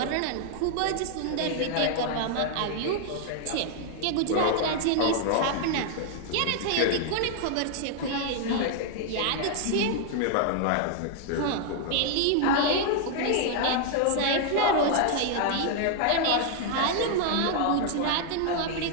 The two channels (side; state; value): both; different; correlation 0.00